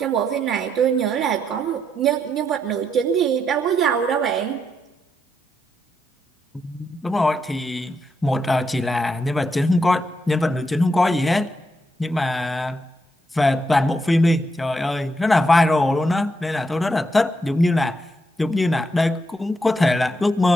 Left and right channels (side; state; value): both; normal; correlation 0.80